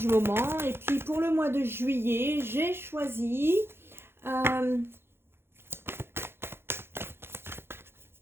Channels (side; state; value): left; late; 0.11 ms